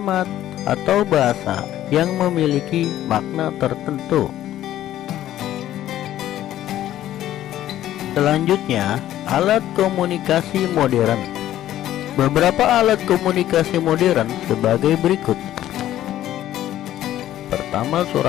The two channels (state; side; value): quieter; right; 12.9 dB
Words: atau bahasa yang memiliki makna tertentu. Selanjutnya, alat komunikasi modern. Beberapa alat komunikasi modern sebagai berikut. Pertama,